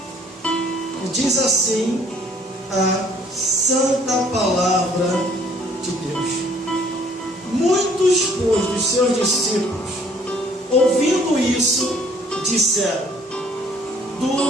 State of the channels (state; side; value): normal; both; correlation 0.59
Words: E diz assim a santa palavra de Deus. Muitos, pois, dos seus discípulos, ouvindo isso, disseram: